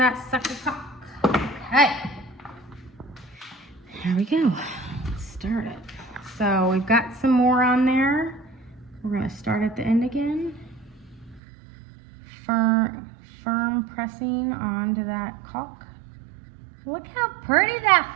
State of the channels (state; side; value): drops out; left; at 11.4 s